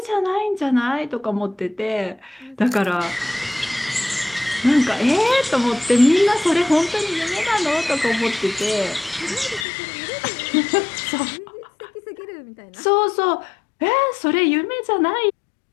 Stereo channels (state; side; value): drops out; right; at 9.7 s